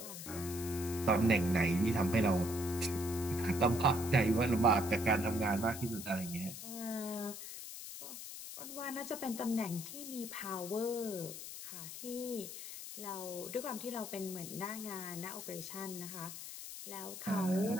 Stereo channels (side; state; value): left; noise; hiss, 9 dB below the sound